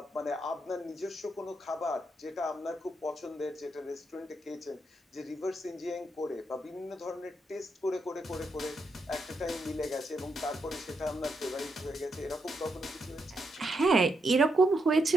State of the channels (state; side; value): normal; both; correlation 0.81